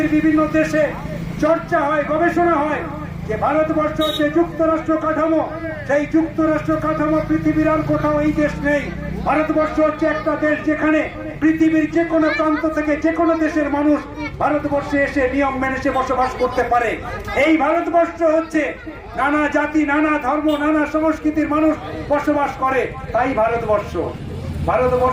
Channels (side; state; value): both; identical; correlation 1.00